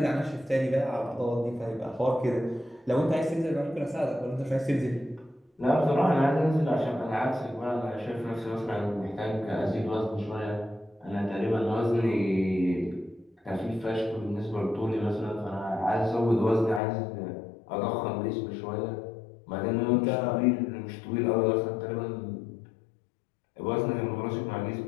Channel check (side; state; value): right; drops out; at 16.8 s